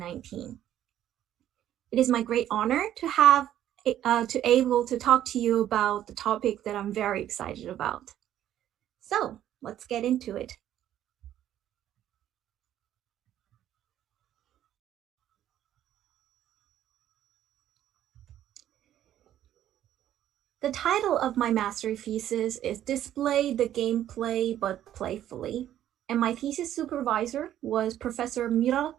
It is my great honor to have to able to talk to you about the topic that I'm very excited about. So let's get into it. The title of my master thesis is Display the Gameplay but Playfully, and my thesis supervisor was Professor Mira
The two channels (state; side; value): quieter; left; 11.7 dB